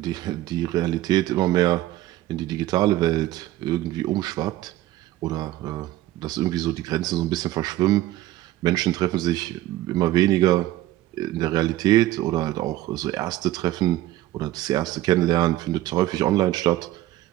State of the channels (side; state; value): left; quieter; 15.3 dB